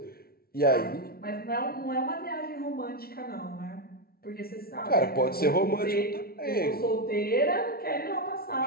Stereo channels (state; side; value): late; right; 0.44 ms